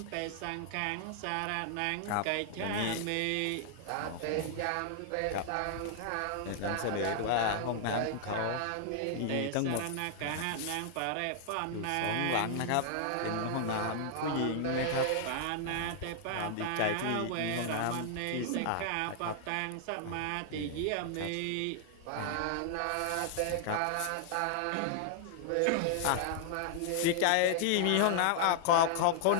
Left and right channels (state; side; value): different; both; correlation -0.01